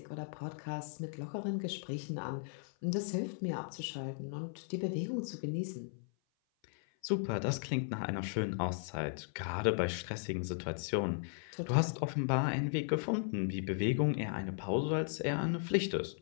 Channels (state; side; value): silent; right; 53 dB below the other